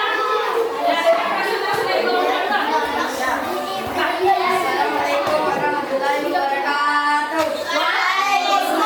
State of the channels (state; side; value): identical; both; correlation 1.00